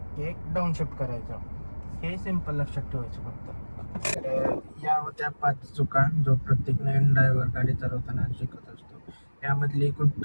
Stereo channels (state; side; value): inverted; both; correlation -1.00